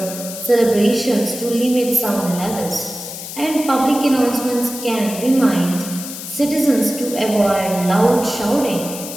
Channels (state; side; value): noise; left; hiss, 10 dB below the sound